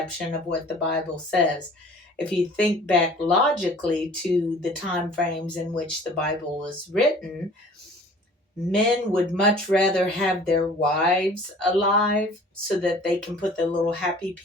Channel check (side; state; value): both; normal; correlation 0.49